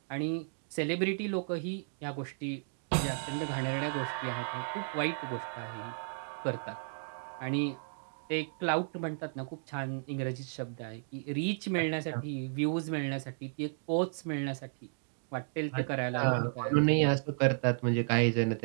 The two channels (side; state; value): left; silent; digital silence